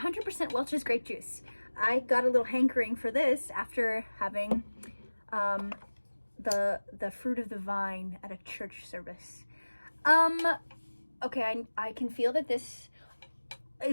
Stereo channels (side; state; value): both; inverted; correlation -1.00